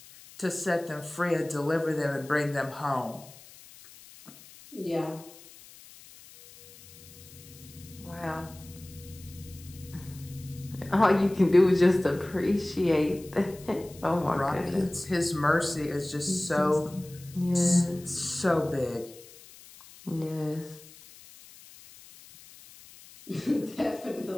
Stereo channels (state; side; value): noise; left; hiss, 21 dB below the sound